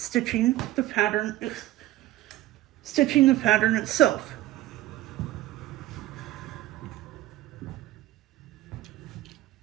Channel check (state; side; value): quieter; left; 15.3 dB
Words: the pattern itself.